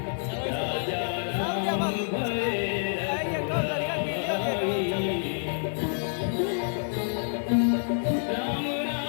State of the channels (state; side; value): silent; right; digital silence